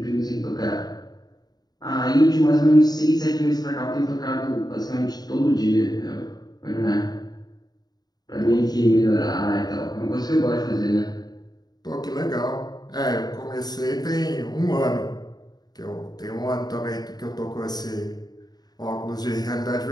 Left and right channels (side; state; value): right; late; 0.19 ms